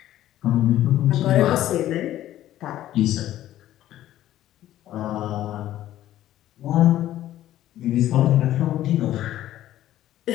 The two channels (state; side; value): quieter; right; 13.3 dB